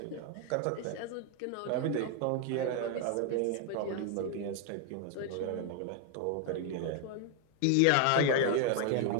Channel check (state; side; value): different; both; correlation 0.01